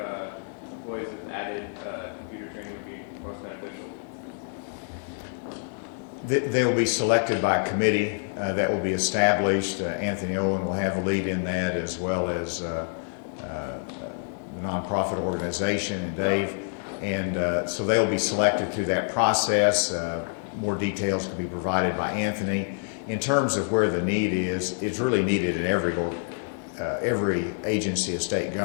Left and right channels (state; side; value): silent; right; digital silence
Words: employees with added computer training would be most beneficial? They will be selected by a committee that will be established. Anthony Owen will have a lead in that, as well as the nonprofit organization and Dave. And so they'll be selected through that process. More details can be provided by Anthony. In terms of where the need is, it's really needed in every agency of state